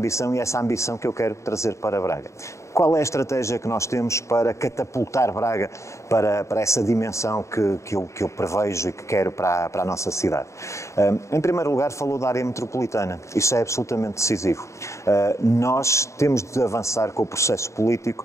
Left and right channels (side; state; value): right; late; 0.14 ms